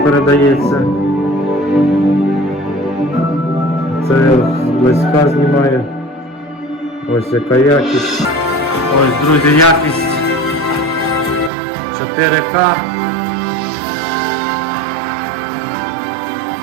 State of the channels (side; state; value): left; drops out; at 11.5 s